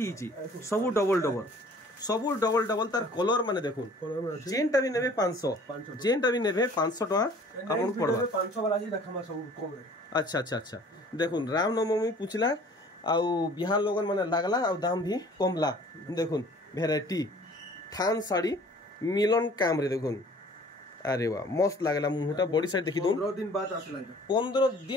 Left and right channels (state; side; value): normal; both; correlation 0.51